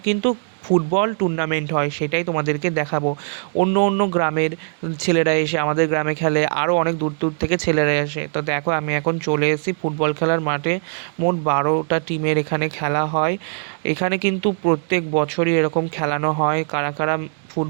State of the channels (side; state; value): left; silent; digital silence